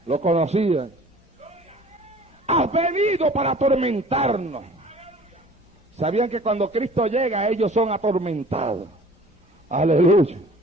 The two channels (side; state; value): both; normal; correlation 0.48